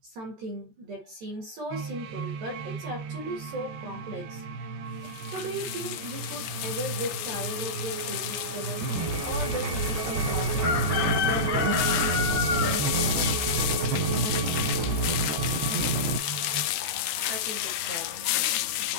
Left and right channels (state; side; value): late; left; 13 ms